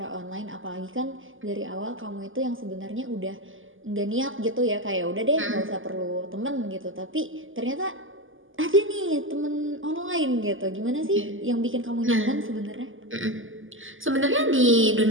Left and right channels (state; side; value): late; left; 0.58 ms